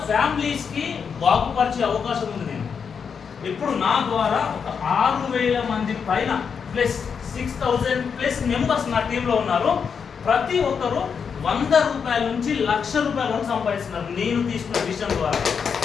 ఫ్యామిలీస్కి బాగుపరిచే అవకాశం ఉంది. నేను ఇప్పుడు నా ద్వారా ఒక 6,000 మంది పైన ప్లస్ 6,000+ మెంబర్స్ నా టీంలో ఉన్నారు. ప్రతి ఒక్కరు ₹100 నుంచి ₹1,00,000 వరకు సంపాదిస్తున్నారు నేను తీసుకున్న విషయం ద్వారా.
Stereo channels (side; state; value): right; quieter; 6.4 dB